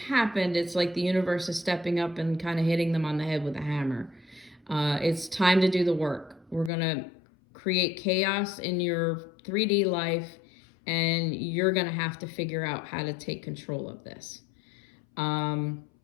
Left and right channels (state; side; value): drops out; right; at 6.7 s